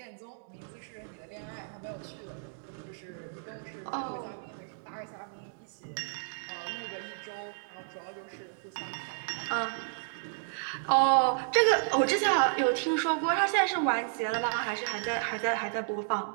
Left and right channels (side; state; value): left; silent; 56 dB below the other